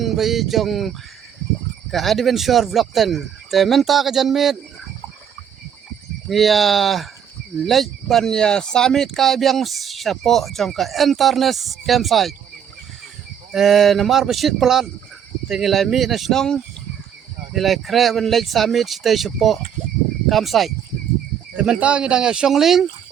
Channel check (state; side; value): quieter; left; 8.6 dB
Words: bi jong ke adventure vlog ten te menta ke janmit ya lej ban ya summit kai biang sapo jong ke internet campsite namar besit pelan tingilai mi nasionong nilai kre ban lej summit stay sapo campsite te menta ngidang ya shongling